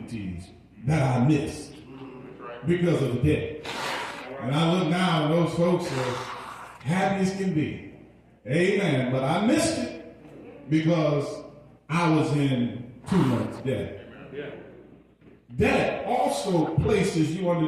that I missed because of debt. And I look now and those folks are happy as can be. Amen. But I missed it because I was in too much debt. Debt also places you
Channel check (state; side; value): identical; both; correlation 1.00